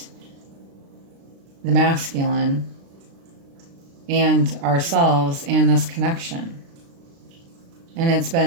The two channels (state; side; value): late; left; 36 ms